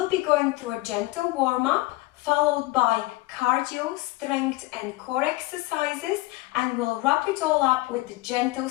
be going through a gentle warm-up followed by cardio, strength and core exercises, and we'll wrap it all up with a gentle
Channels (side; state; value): right; quieter; 20.3 dB